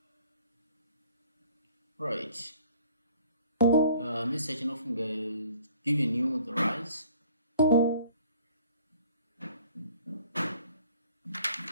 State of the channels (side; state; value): both; inverted; correlation -0.55